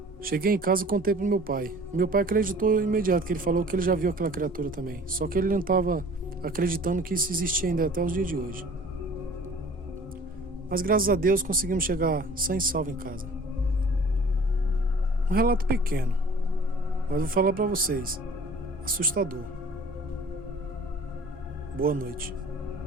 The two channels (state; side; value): normal; both; correlation 0.47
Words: Cheguei em casa e contei pro meu pai. Meu pai acreditou imediato, que ele falou que ele já viu aquela criatura também. Só que ele não estava acreditando que isso existia ainda até os dias de hoje. Mas graças a Deus conseguimos chegar sã e salvo em casa. Um relato pequeno, mas vou falar para vocês, assustador. Boa noite.